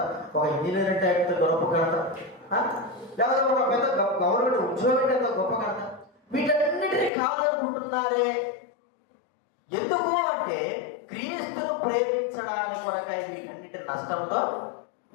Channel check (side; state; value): right; drops out; at 7.1 s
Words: ఒక ఇంజనీర్ అంటే ఎంత గొప్ప ఘనత, లేకపోతే ఒక పెద్ద గవర్నమెంట్ ఉద్యోగం అంటే ఎంత గొప్ప ఘనత. వీటన్నిటినీ కాదనుకుంటున్నారే. ఎందుకు అంటే క్రీస్తును ప్రేమించడానికి కొరకై వీటన్నిటి నష్టంతో